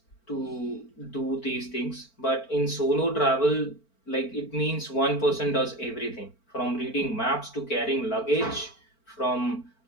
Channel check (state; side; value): late; right; 4.4 ms